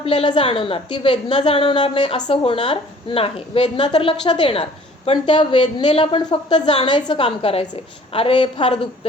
जाणवणार, ती वेदना जाणवणार नाही असं होणार नाही. वेदना तर लक्षात येणार, पण त्या वेदनेला पण फक्त जाणायचं काम करायचंय. अरे फार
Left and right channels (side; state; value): both; normal; correlation 0.53